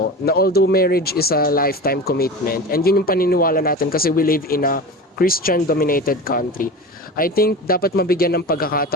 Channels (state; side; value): normal; both; correlation 0.31